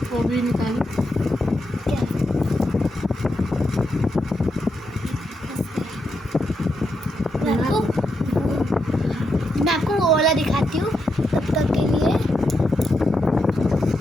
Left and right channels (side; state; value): both; normal; correlation 0.83